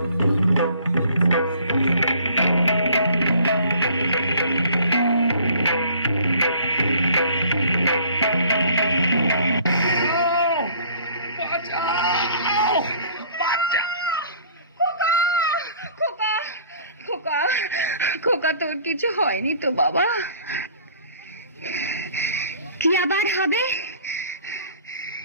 খোকা, খোকা, খোকা, তোর কিছু হয়নি তো বাবা? কি আবার হবে?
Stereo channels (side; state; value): both; inverted; correlation -0.53